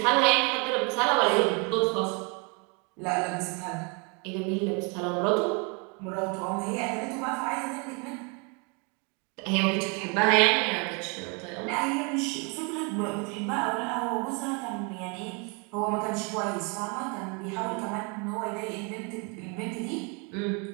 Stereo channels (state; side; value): quieter; left; 33.3 dB